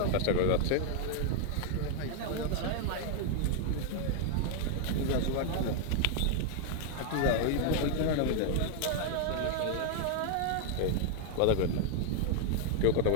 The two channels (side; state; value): both; different; correlation 0.00